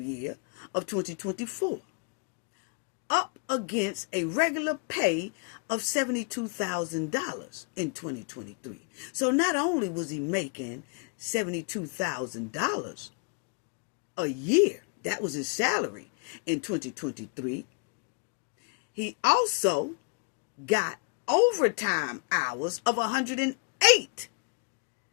year of 2024, up against a regular pay of $72,000 in 2023. So not only was he making $72,000 a year, that was his salary in 2023, he also got overtime hours of $108,000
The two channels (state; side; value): quieter; right; 35.8 dB